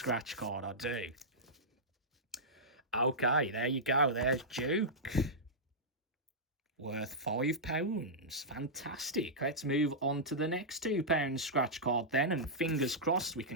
card, I do. Okay, there you go. There's Duke. Worth £5. Fantastic. Let's move on to the next £2 scratch card then. And fingers crossed we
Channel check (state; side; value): normal; both; correlation -0.12